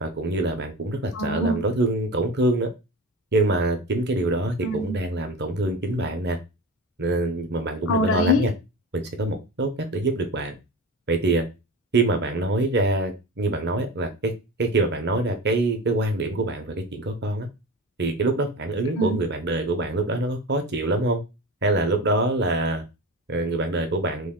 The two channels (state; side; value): normal; both; correlation 0.29